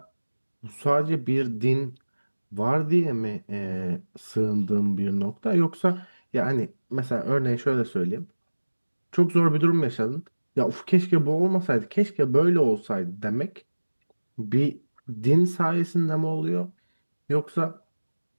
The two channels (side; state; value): both; inverted; correlation -1.00